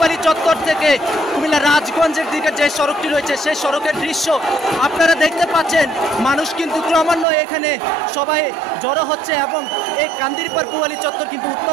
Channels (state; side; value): drops out; left; at 7.2 s